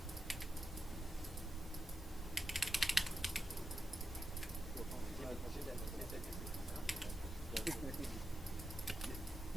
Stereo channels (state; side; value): normal; both; correlation 0.87